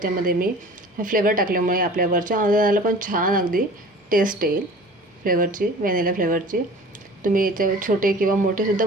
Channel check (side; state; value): both; normal; correlation 0.43